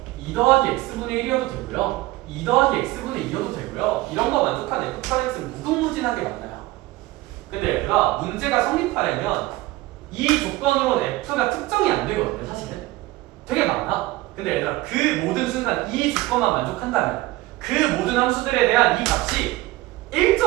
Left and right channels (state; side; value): quieter; left; 18.7 dB